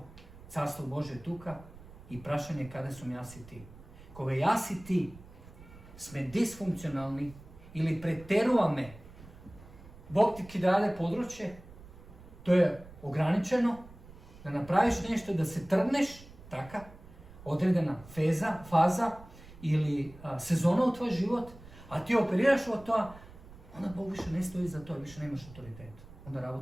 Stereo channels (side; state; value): right; noise; rumble, 19 dB below the sound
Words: carstvo Božje tuka i prašanje kada su jas i ti. Koga jas i ti sme disfunkcionalni ili preteruvame, Bog ti dade područje, to je ograničeno, da napraviš nešto, da se trgneš, taka, odredena faza ili sezona u tvoj život, a ti operiraš od toga, onda Bog više ne stoji za to, više nemaš autoritet. Onda